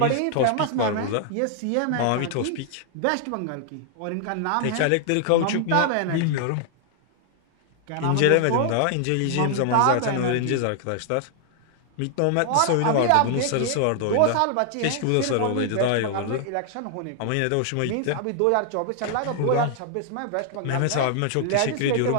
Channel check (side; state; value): both; different; correlation 0.00